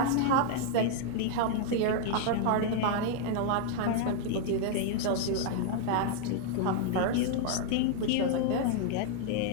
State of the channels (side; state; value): both; different; correlation 0.00